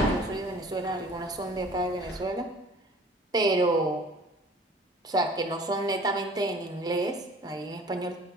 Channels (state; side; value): normal; both; correlation 0.49